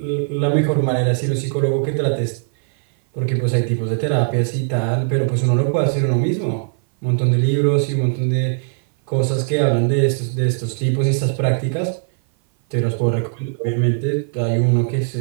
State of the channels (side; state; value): left; silent; 58 dB below the other